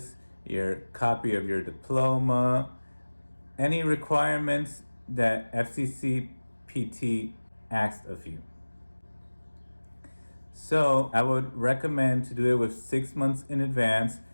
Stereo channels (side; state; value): both; inverted; correlation -1.00